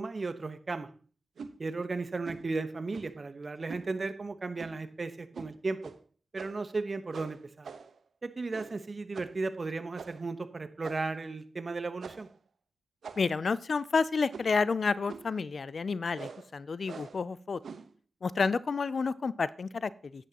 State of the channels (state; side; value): normal; both; correlation 0.90